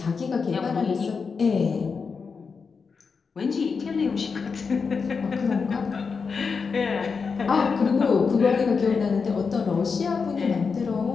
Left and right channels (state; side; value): quieter; right; 5.3 dB